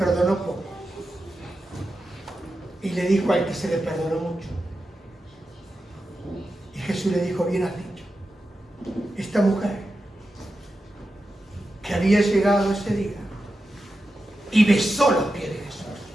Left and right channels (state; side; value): normal; both; correlation 0.90